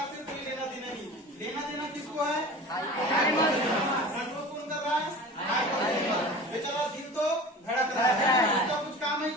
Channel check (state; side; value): normal; both; correlation 0.37